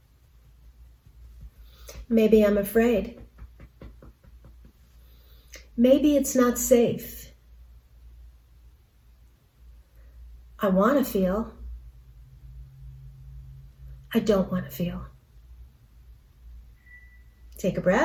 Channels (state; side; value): identical; both; correlation 1.00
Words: Maybe I'm afraid. Maybe it's not safe. I want to feel. I don't want to feel. Take a